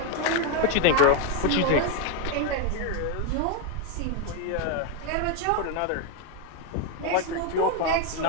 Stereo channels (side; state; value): both; different; correlation 0.02